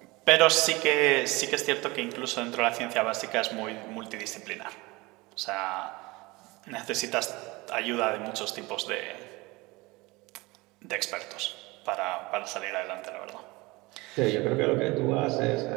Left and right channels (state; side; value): quieter; left; 23.0 dB